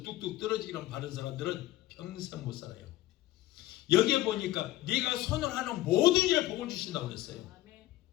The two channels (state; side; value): quieter; right; 15.6 dB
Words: 뚝뚝 떨어지기만 바른 사람들은 평생 못 살아요. 여기에 보니까 네가 손을 하는 모든 일에 복을 주신다고 그랬어요.